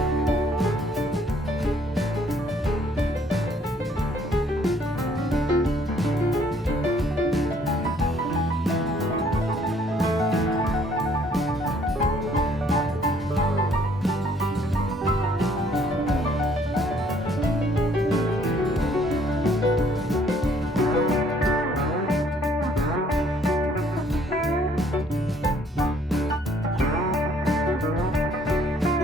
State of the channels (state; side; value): normal; both; correlation 0.62